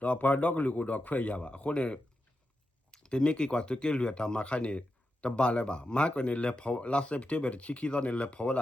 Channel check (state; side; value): normal; both; correlation 0.88